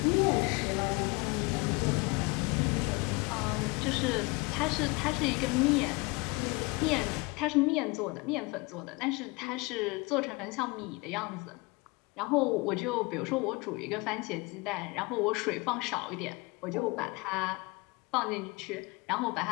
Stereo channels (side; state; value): right; quieter; 26.5 dB